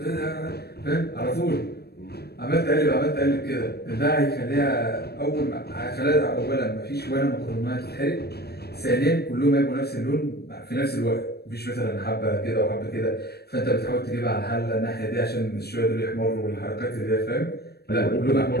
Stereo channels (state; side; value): late; right; 0.47 ms